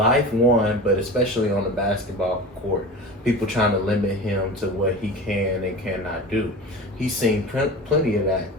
but especially on the basketball court. People trying to limit him to what he can and cannot do. He's seen plenty of that,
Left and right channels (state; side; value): normal; both; correlation 0.33